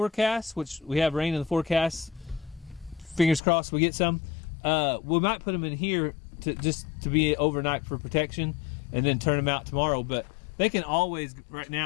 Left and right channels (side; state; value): right; drops out; at 3.4 s